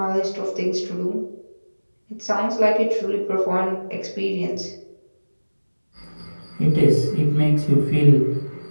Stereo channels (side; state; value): both; inverted; correlation -1.00